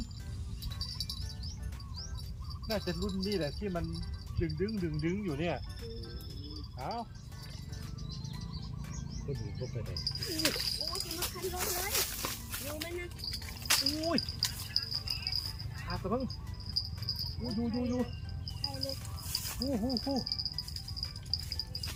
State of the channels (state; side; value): identical; both; correlation 1.00